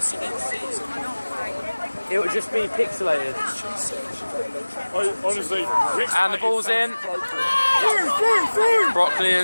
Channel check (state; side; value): inverted; both; correlation -1.00